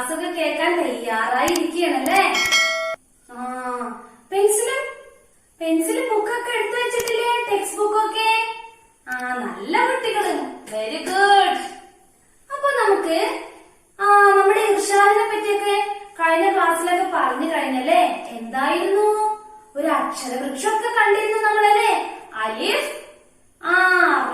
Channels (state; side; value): identical; both; correlation 1.00